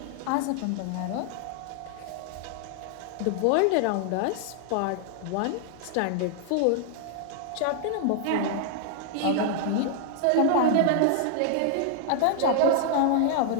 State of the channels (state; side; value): different; both; correlation 0.00